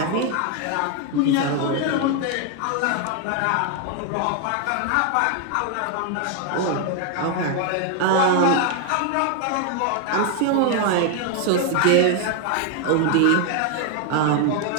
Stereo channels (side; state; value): both; different; correlation 0.00